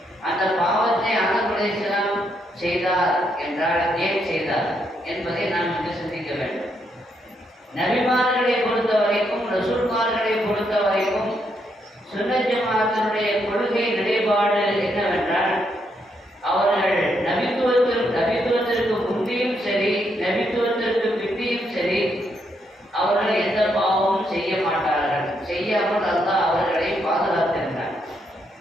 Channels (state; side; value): normal; both; correlation 0.77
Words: அந்த பாவத்தை ஆதம் அலைஹிஸ்ஸலாம் செய்தார் என்றால் ஏன் செய்தார் என்பதை நாம் இங்கு சிந்திக்க வேண்டும். நபிமார்களை பொறுத்த வரைக்கும், ரசூல்மார்களை பொறுத்த வரைக்கும் சுன்னத் ஜமாஅத்தினுடைய கொள்கை நிலைப்பாடு என்னவென்றால், அவர்கள் நபித்துவத்திற்கு முந்தியும் சரி, நபித்துவத்திற்கு பிந்தியும் சரி, அவர்கள் எந்த பாவமும் செய்ய மாட்டார்கள். செய்யாமல் அல்லாஹ் அவர்களை பாதுகாத்திருந்தார்.